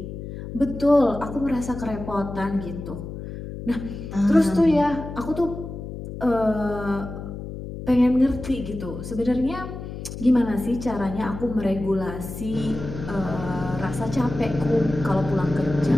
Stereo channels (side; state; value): left; noise; hum, 9 dB below the sound